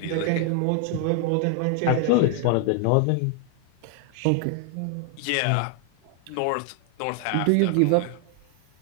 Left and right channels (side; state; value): both; different; correlation 0.00